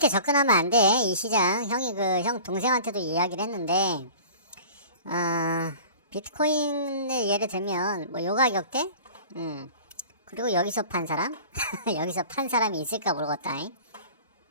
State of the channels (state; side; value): inverted; both; correlation -0.41